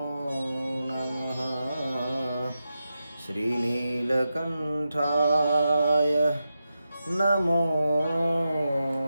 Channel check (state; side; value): inverted; both; correlation -0.89